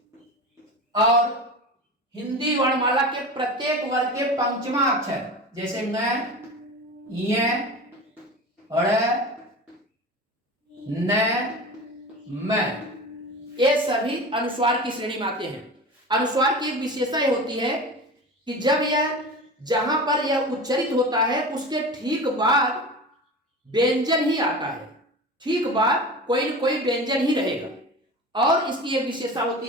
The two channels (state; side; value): normal; both; correlation 0.32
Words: और हिंदी वर्णमाला के प्रत्येक वर्ग के पंचमा अक्षर, जैसे न, य, ड़, न, म, ये सभी अनुस्वार की श्रेणी में आते हैं। अनुस्वार की एक विशेषता यह होती है कि जब यह, जहां पर यह उच्चरित होता है उसके ठीक बाद व्यंजन ही आता है, ठीक बाद कोई न कोई व्यंजन ही रहेगा। और इसकी एक विशेषता